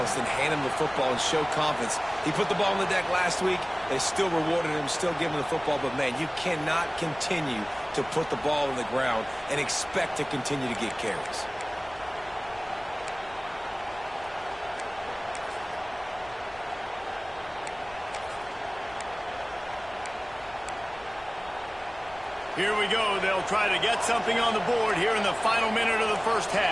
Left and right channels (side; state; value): left; noise; rumble, 23 dB below the sound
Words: and hand him the football and show confidence. He put the ball on the deck last week. They still rewarded him, still giving him the football. But, man, you cannot continue to put the ball on the ground and expect to continue to get carries. Here we go. They'll try to get something on the board here in the final minute of the first